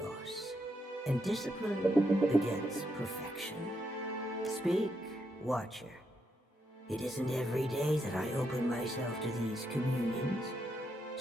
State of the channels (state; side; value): normal; both; correlation 0.80